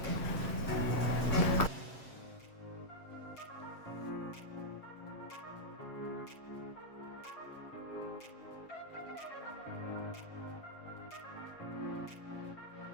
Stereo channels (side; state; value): right; late; 7.5 ms